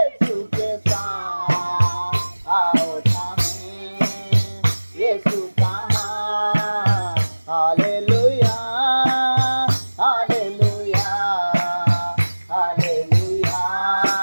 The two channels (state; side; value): inverted; both; correlation -1.00